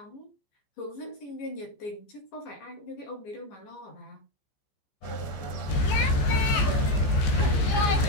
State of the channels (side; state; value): right; late; 15 ms